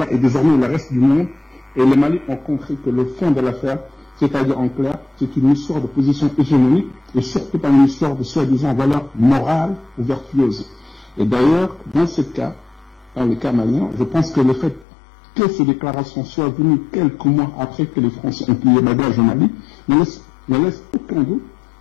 et désormais le reste du monde et le Mali ont compris que le fond de l'affaire, c'est-à-dire en clair, c'est une histoire de position hégémonique, et surtout pas une histoire de soi-disant valeurs morales ou vertueuses. Et d'ailleurs, dans ce cas, dans le cas malien, je pense que le fait que ces déclarations soient venues quelques mois après que les Français ont plié bagage au Mali ne laisse aucun doute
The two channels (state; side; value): drops out; right; at 14.9 s